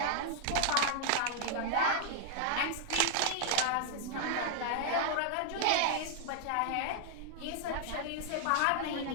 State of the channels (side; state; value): both; different; correlation 0.00